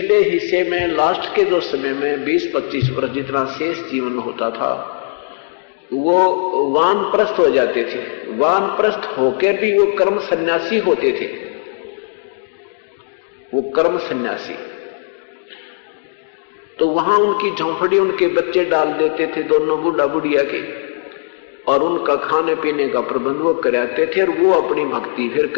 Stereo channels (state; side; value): silent; right; digital silence